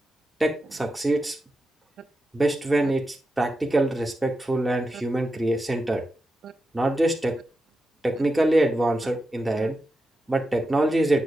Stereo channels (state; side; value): normal; both; correlation 0.89